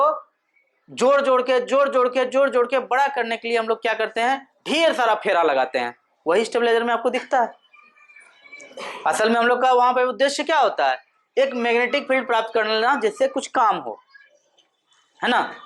जोड़ जोड़ के बड़ा करने के लिए हम लोग क्या करते हैं, ढेर सारा फेरा लगाते हैं। वही स्टेबलाइजर में आपको दिखता है। असल में हम लोग का वहां पे उद्देश्य क्या होता है, एक मैग्नेटिक फील्ड प्राप्त कर लेना जिससे कुछ काम हो, है ना।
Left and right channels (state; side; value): identical; both; correlation 1.00